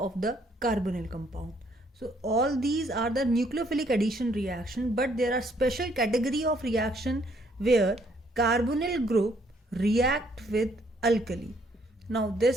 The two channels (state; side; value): normal; both; correlation 0.67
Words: the carbonyl compound. So all these are the nucleophilic addition reaction, but there are special category of reaction where carbonyl group react with alkali. Now